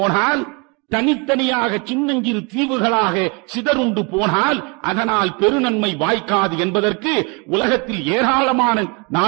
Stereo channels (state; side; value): quieter; left; 30.7 dB